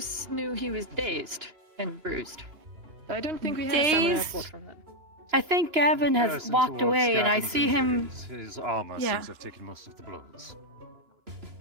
knew he was dazed and bruised. I don't think we had a stamina Dazed? report from that. I think Gavin has Comparison walked towards away, and I Gavin's see him. injuries, his armor Yeah. seems to have taken most of the blows.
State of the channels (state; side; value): late; left; 2.9 ms